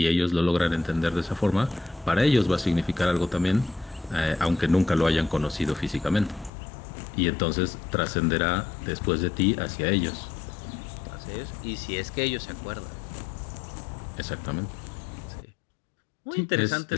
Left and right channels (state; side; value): drops out; right; at 6.5 s